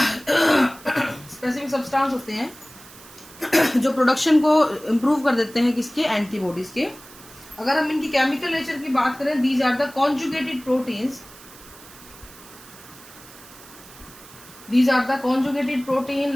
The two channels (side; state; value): right; noise; hiss, 20 dB below the sound